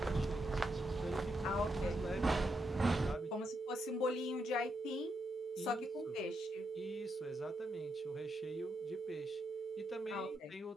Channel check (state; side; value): normal; both; correlation 0.81